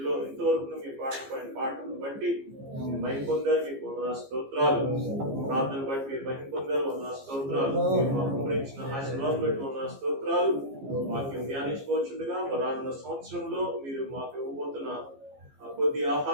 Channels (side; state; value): left; late; 15 ms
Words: ఎంతవరకు మీ పాటను బట్టి మహిమ పొందారు. మీకు వందనాలు, స్తోత్రాలు. ప్రార్థన బట్టి మీరు మహిమ పొందారు, వందనాలు, స్తోత్రాలు. మీరు మాకు గురించిన ఆశీర్వాదం బట్టి వందనాలు, స్తోత్రాలు. వాక్యం ధ్యానించుకోవచ్చుండగా రానున్న సంవత్సరంలో మీరు మాకు ఇవ్వబోతున్న కొద్ది